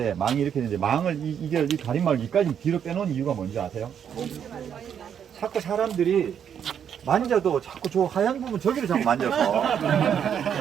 망이 이렇게 되는데, 망을, 이 가림막을 여기까지 뒤로 빼놓은 이유가 뭔지 아세요? 자꾸 사람들이 만져도 자꾸 저 하얀 부분 저기를 자꾸 만져서,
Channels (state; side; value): quieter; left; 8.4 dB